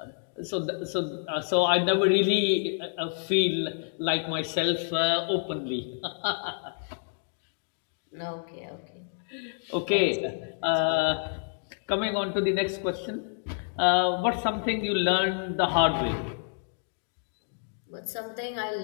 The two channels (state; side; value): silent; right; digital silence